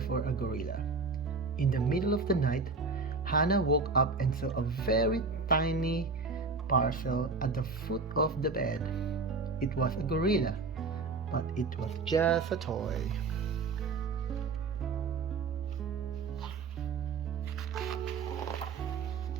a gorilla. In the middle of the night, Hannah woke up and saw a very tiny parcel at the foot of the bed. It was a gorilla, but it was just a toy.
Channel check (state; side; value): quieter; left; 4.2 dB